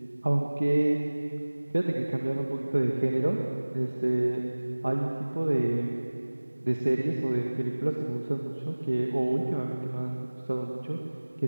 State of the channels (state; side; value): inverted; both; correlation -1.00